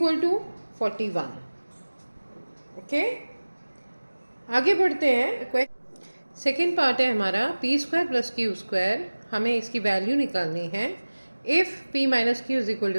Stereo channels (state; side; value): inverted; both; correlation -1.00